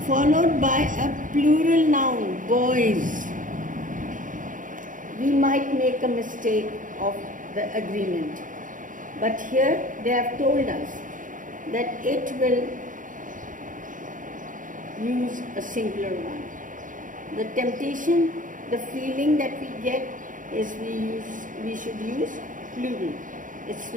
followed by a plural noun, boys, we might make a mistake of the agreement. But here they have told us that it will use a singular one. The temptation, the feeling that we get is we should use plural. It's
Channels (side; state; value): left; late; 0.38 ms